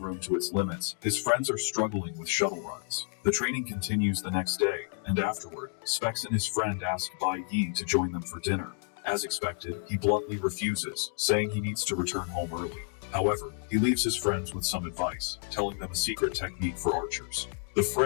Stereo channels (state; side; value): silent; right; 55 dB below the other